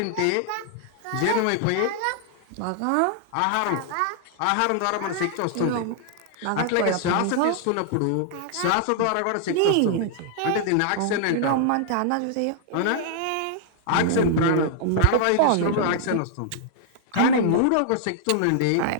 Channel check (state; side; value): different; both; correlation -0.01